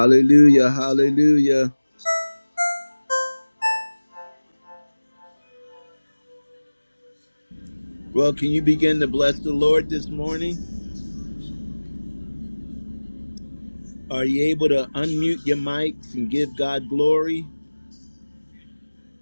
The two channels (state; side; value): inverted; both; correlation -1.00